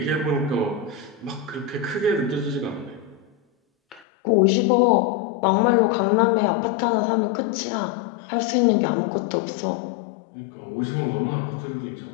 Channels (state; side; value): drops out; right; at 4.0 s